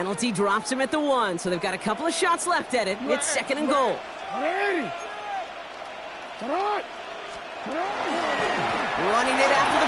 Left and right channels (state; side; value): identical; both; correlation 1.00